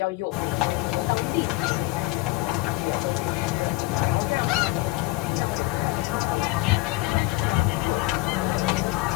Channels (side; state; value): right; quieter; 21.3 dB